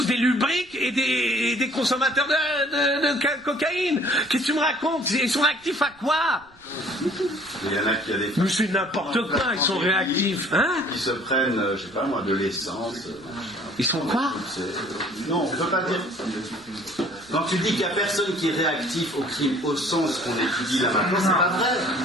des lubriques et des consommateurs de cocaïne. Qu'est-ce que tu me racontes ? Ils sont réactifs à quoi ? Il y en a qui a des... Mais c'est n'importe quoi, ils sont réactifs. Hein ? Ils se prennent, je sais pas moi, de l'essence. Ils sont quoi ? Non, on ne peut pas dire... Quand tu dis qu'il n'y a personne qui est réactif au crime au sens qu'on étudie là maintenant, c'est pas vrai.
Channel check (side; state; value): right; noise; rumble, 28 dB below the sound